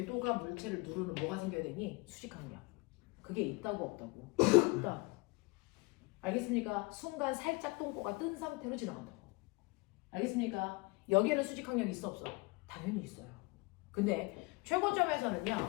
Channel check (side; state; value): right; quieter; 25.4 dB